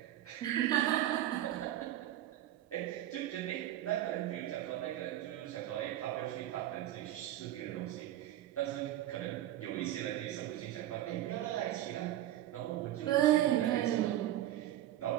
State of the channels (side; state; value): left; quieter; 13.2 dB